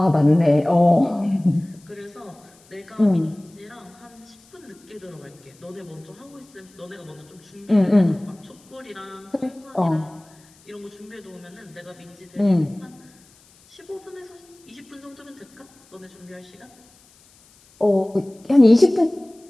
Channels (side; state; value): left; noise; hiss, 29 dB below the sound